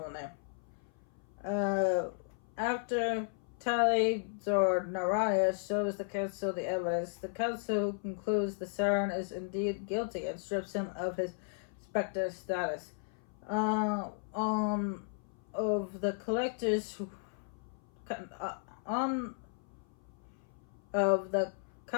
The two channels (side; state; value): right; silent; 54 dB below the other